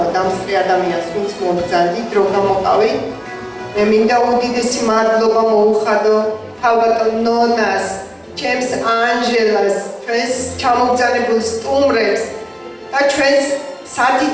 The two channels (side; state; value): both; identical; correlation 1.00